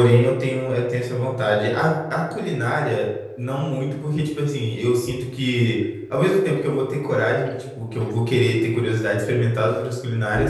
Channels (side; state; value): both; identical; correlation 1.00